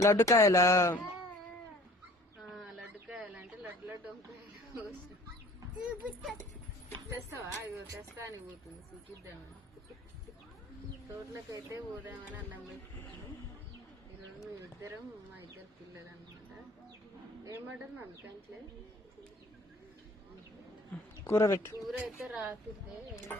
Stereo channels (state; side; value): normal; both; correlation 0.50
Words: లడ్డుకాయలా? లడ్డుకాయలు అంటే లడ్డు వంకాయలు తెస్తావా? ఇగో తెస్తా అని పోతుంది, చూపిద్దామని. తోటలకైతే పోదామని అన్నం పెట్టుకుంటాను. ఈరోజు మేమిద్దరం, మా ఇద్దరు పిల్లలు అనమాట. ఏమంటారు మమ్మీ? కంట్లే కూర పెట్టు. కూర అయితే రాకుతే